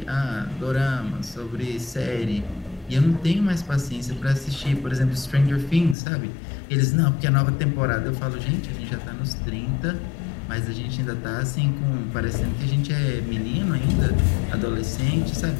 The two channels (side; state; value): right; drops out; at 6.0 s